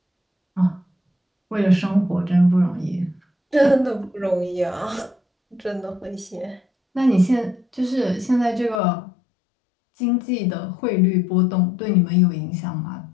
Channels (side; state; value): right; drops out; at 8.8 s